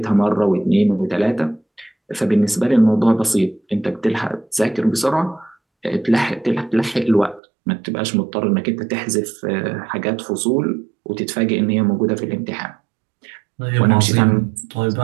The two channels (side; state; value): left; drops out; at 7.4 s